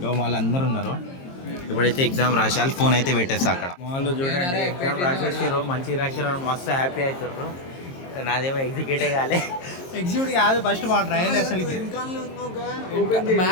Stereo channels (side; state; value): right; late; 22 ms